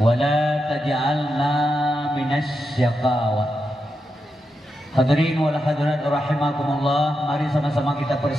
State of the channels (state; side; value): normal; both; correlation 0.87